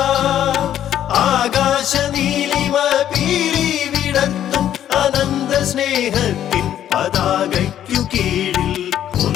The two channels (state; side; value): quieter; right; 10.9 dB